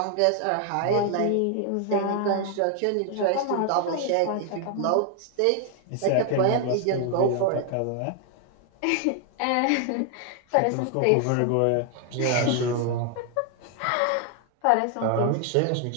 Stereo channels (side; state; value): both; different; correlation 0.00